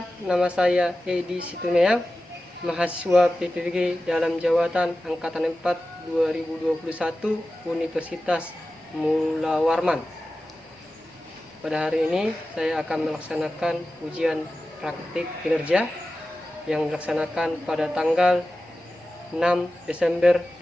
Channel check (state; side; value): normal; both; correlation 0.94